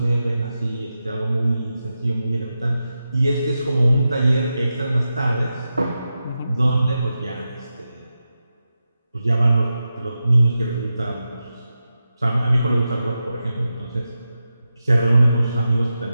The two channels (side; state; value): both; inverted; correlation -0.91